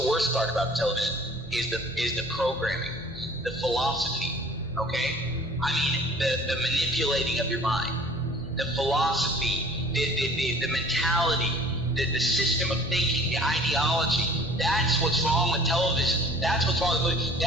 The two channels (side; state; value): both; normal; correlation 0.49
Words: worst part about television is the programming, the philosophy, okay? I mean, the manipulating of your mind, the philosophy, the mentality, the system of thinking, the ideology. That's what's wrong with television. That's what's wrong with movies.